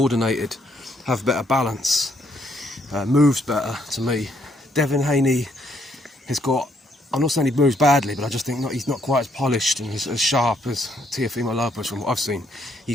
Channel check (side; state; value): both; normal; correlation 0.71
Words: have better balance, moves better to me. Devin Haney has got, I'm not saying he moves badly, but I just think he's not quite as polished and as sharp as Teofimo Lopez from what I've seen.